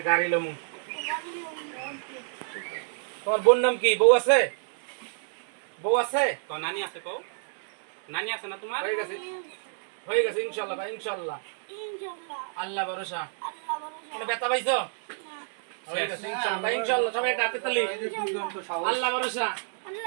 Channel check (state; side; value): silent; left; digital silence